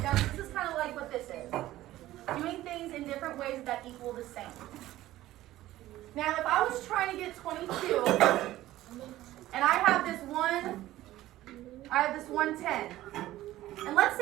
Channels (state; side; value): quieter; left; 15.3 dB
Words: down. This is kind of like what this is. Doing things in different ways that equal the same. Now, if I was trying to get 22, and I have this 110, and let's